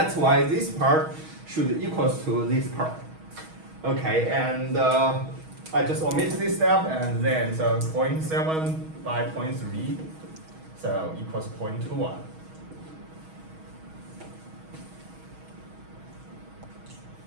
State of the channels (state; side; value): late; left; 6.3 ms